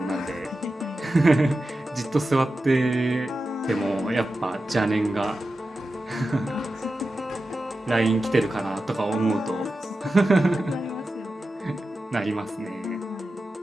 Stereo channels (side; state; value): both; normal; correlation 0.92